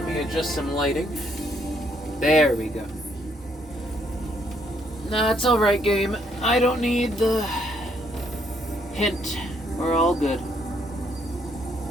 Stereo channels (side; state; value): both; normal; correlation 0.71